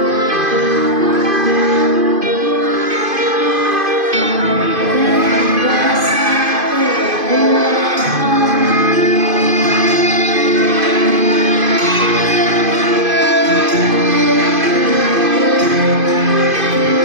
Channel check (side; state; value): left; late; 2.5 ms